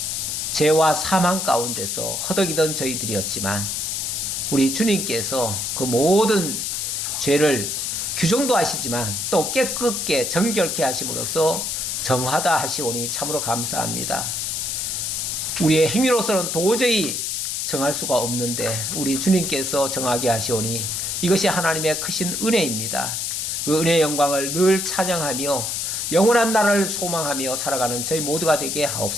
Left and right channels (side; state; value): left; noise; hiss, 2 dB below the sound